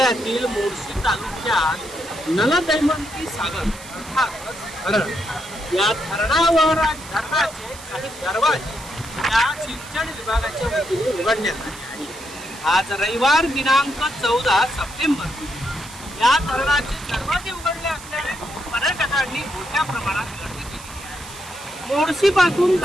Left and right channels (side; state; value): right; noise; hiss, 16 dB below the sound